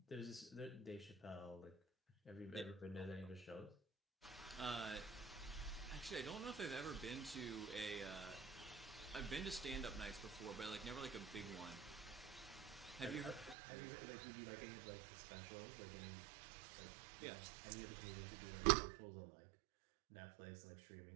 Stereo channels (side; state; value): left; drops out; at 13.6 s